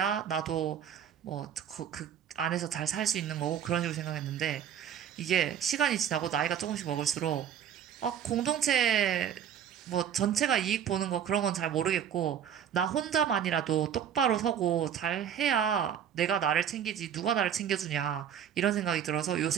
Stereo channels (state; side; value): quieter; left; 8.9 dB